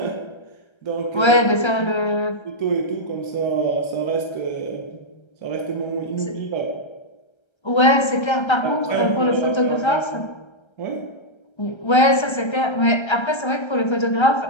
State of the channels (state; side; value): late; right; 1.3 ms